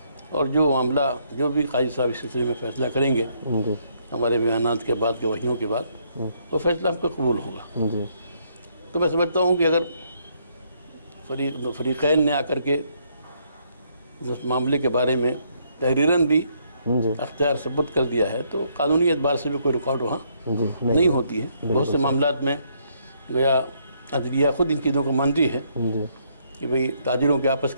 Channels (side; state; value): both; inverted; correlation -0.71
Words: اور جو معاملہ جو بھی قاضی صاحب اس سلسلے میں فیصلہ کریں گے ہمارے بیانات کے بعد، گواہیوں کے بعد، وہ فیصلہ ہم پہ قبول ہوگا. تو میں سمجھتا ہوں کہ اگر فریقین نے آ کر کے اس معاملے کے بارے میں تحریراً بھی اختیار ثبت کر دیا ہے تو قانونی اعتبار سے بھی کوئی رکاوٹ وہاں نہیں ہوتی ہے. بہت سے معاملات میں گویا عدلیہ خود ان چیزوں کو مانتی ہے کہ بھئی تاجروں کے آپس